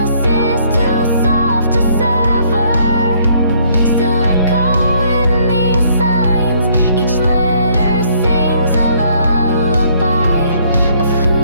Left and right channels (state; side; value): inverted; both; correlation -0.64